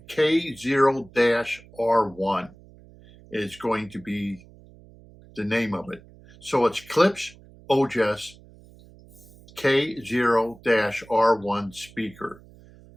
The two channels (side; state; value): right; noise; hum, 23 dB below the sound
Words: K0-R1 is going to be the name of it. So it's Klipsch Ojas K0-R1 speaker.